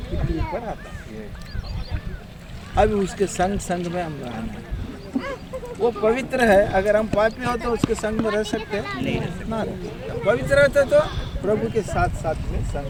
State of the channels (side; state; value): both; identical; correlation 1.00